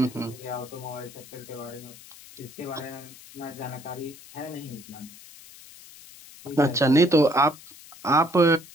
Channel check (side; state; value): left; noise; hiss, 19 dB below the sound